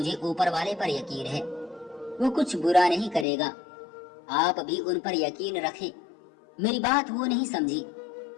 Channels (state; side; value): drops out; right; at 3.2 s